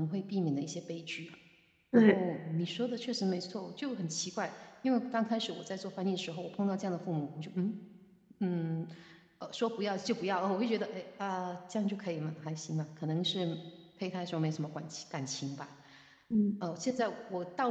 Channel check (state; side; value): identical; both; correlation 1.00